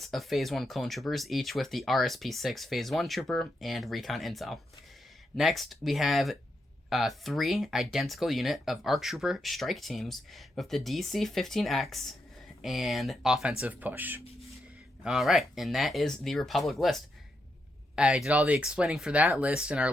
of Phase 1 clone troopers, each with the RSP-6 Phase 1 trooper and Recon Intel. Next, we have three identical unit of ARC Trooper strike teams with the DC-15X and offensive push. Alright, and that is the Republic list. I did all the explaining for that list in our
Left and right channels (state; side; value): normal; both; correlation 0.83